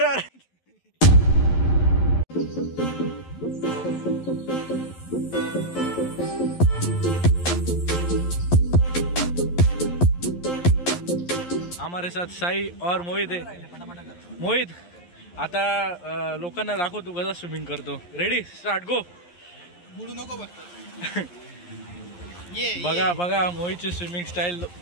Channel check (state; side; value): late; right; 11 ms